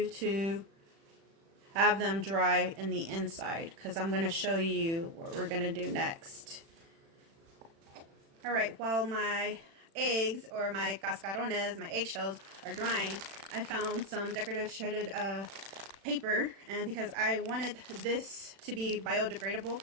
to have them dry in the inside, because I'm going to show you what we're going to do next. Alright, while my eggs, or my cascarones, my eggshells, are drying, I found some decorative shredded paper, and because I wanted this to be biodegradable,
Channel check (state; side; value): late; left; 36 ms